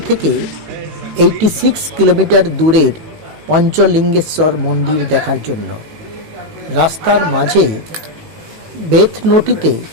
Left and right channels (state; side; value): late; left; 18 ms